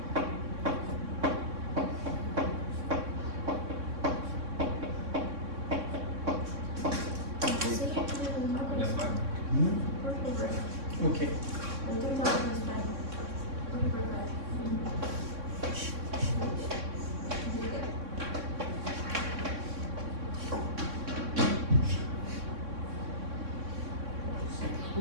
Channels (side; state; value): left; late; 3.6 ms